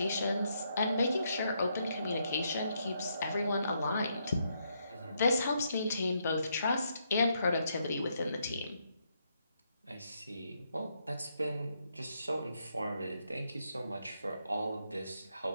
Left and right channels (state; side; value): inverted; both; correlation -0.77